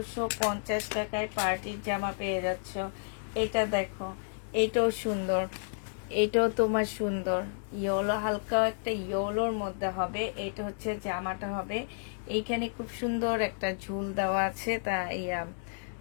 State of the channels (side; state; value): right; silent; digital silence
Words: টাকায় পার্টির জামা পেয়ে যাচ্ছ। এটা দেখো, এটাও সুন্দর, এটাও তোমার সুন্দর। ইয়েলো, হালকা একটা ইয়েলোর মধ্যে হবে। এটা হচ্ছে জামাটা হবে। এইখানে খুব সুন্দর একটা ঝুল দেওয়া আছে। তা ইয়া